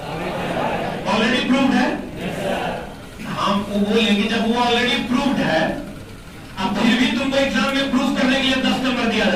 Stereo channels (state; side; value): identical; both; correlation 1.00